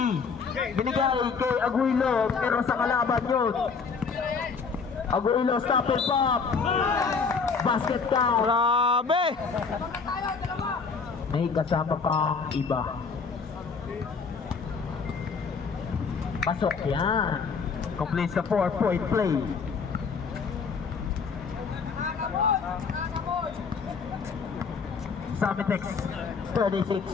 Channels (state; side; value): quieter; right; 5.3 dB